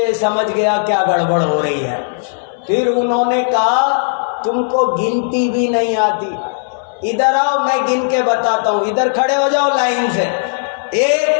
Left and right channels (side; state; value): right; silent; 64 dB below the other